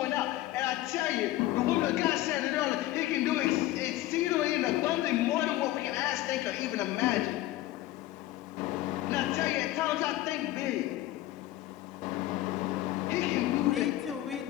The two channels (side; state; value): right; quieter; 15.5 dB